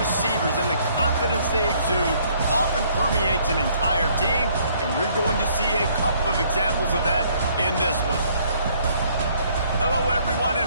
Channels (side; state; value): both; inverted; correlation -0.63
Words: and the confidence they exude often permeates an entire team, and we're going to see a couple of examples of that in this one. Hello, everyone,